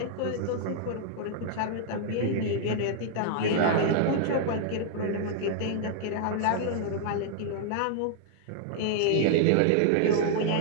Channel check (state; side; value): different; both; correlation -0.01